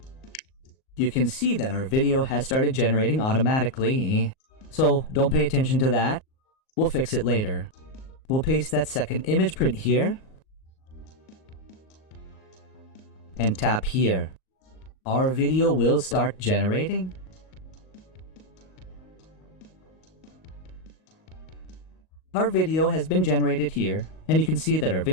You can see that our video has started generating automatically. So don't pay attention to that. We'll fix it later. We'll paste that second image print here. And tap here. Our video will start generating. Our video has been generated here, and you can see that our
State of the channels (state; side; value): late; right; 38 ms